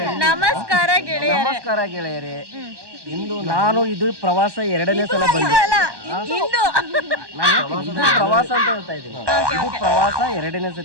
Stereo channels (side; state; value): left; late; 1.2 ms